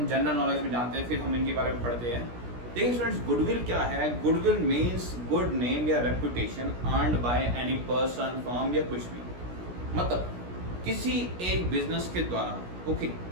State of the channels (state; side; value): late; left; 17 ms